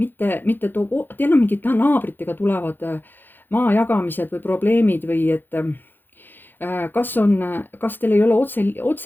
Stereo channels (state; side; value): late; right; 0.093 ms